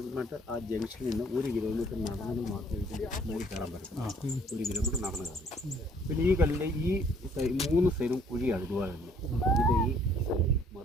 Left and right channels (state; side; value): normal; both; correlation 0.60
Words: ആ ജംഗ്ഷനിൽ നിന്ന് 1 കിലോമീറ്റർ നടന്നെങ്കിൽ മാത്രമേ മേടി കയറാൻ പറ്റും. 1 കിലോമീറ്റർ നടന്നു കയറും. പിന്നെ ഈ കല്ലിൻ്റെ ഈ 3 സൈഡും കുഴിയാണ്. ഇതുപോലെ തന്നെ ഇത് ഈ